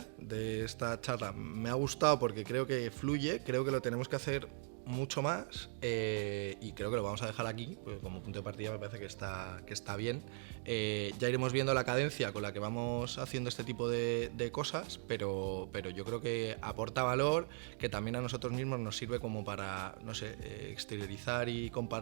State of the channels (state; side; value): silent; left; 51 dB below the other